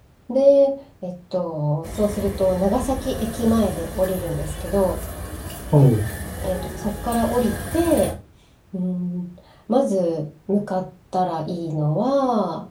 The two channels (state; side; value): identical; both; correlation 1.00